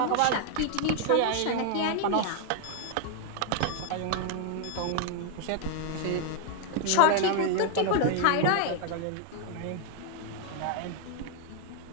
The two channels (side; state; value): both; different; correlation 0.00